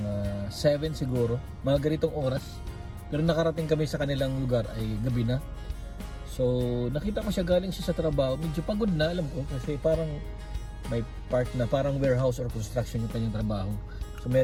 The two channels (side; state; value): both; identical; correlation 1.00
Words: 7 siguro, mga ganitong oras. Pero nakarating kami sa kanilang lugar ay gabi na. So nakita ko siya, galing siya sa trabaho, medyo pagod na, alam ko, kasi parang may part na parang warehouse or construction yung kanyang trabaho. So